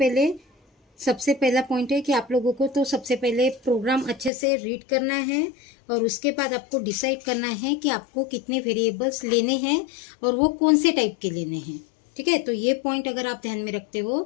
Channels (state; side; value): drops out; right; at 4.3 s